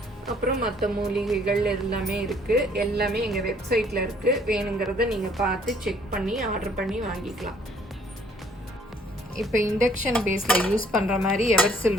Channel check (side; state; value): both; normal; correlation 0.61